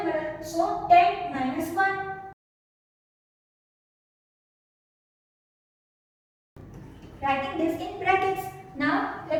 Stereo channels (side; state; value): both; identical; correlation 1.00